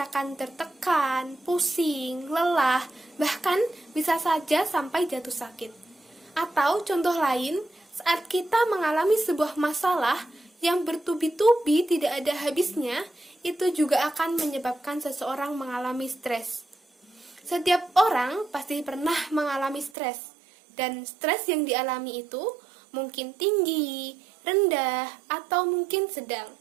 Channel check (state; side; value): drops out; left; at 19.9 s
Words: tertekan, pusing, lelah, bahkan bisa saja sampai jatuh sakit. Atau contoh lain, saat kita mengalami sebuah masalah yang bertubi-tubi tidak ada habisnya, itu juga akan menyebabkan seseorang mengalami stres. Setiap orang pasti pernah mengalami stres, dan stres yang dialami itu mungkin tinggi, rendah, atau mungkin sedang.